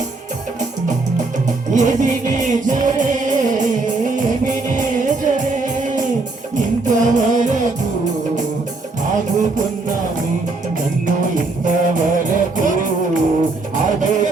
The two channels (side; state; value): left; quieter; 3.5 dB